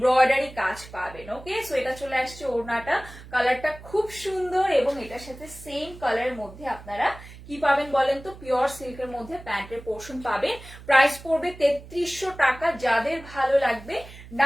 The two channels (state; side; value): noise; right; hum, 17 dB below the sound